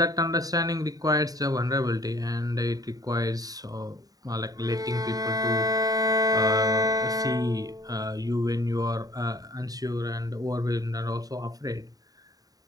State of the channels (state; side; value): late; left; 0.18 ms